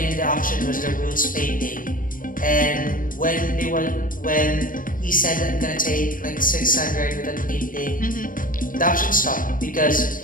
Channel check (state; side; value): late; right; 0.40 ms